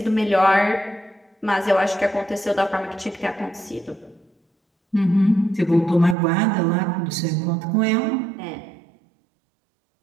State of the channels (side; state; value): left; drops out; at 6.2 s